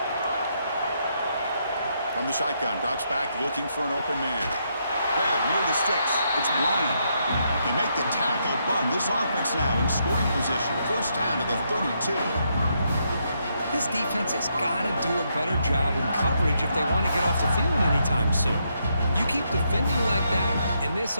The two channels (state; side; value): inverted; both; correlation -0.78